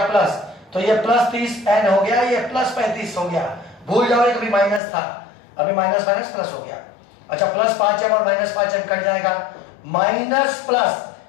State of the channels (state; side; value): drops out; right; at 4.8 s